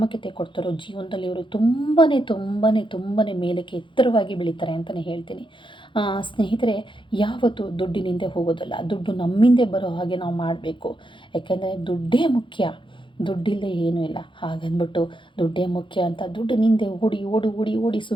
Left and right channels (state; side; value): late; right; 0.24 ms